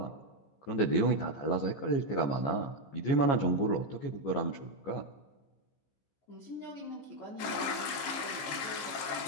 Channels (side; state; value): right; late; 15 ms